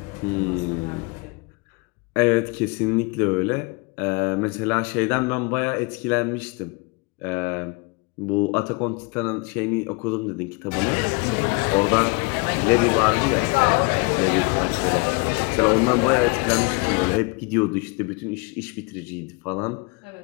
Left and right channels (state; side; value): quieter; right; 29.5 dB